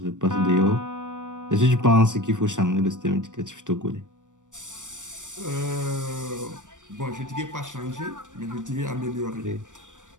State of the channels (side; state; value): left; late; 0.87 ms